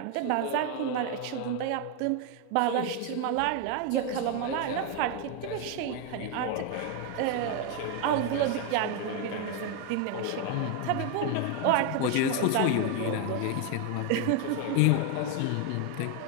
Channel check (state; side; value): different; both; correlation 0.01